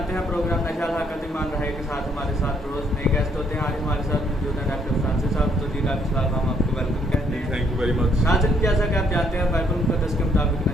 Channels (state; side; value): normal; both; correlation 0.69